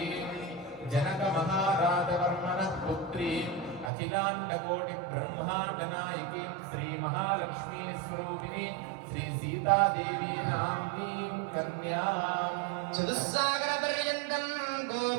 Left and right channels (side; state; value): left; drops out; at 3.9 s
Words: జనక మహారాజవర్మణః పుత్రీం అఖిలాండకోటి బ్రహ్మాండ నాయకీం శ్రీ మహాలక్ష్మీ స్వరూపిణి శ్రీ సీతాదేవి నామ్నీం కన్యాం చతుస్సాగర పర్యంతం